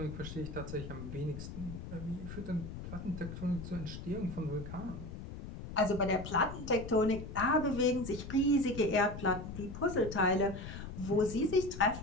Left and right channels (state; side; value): noise; left; rumble, 9 dB below the sound